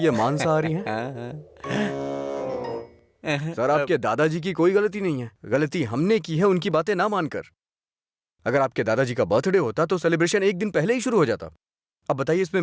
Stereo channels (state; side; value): identical; both; correlation 1.00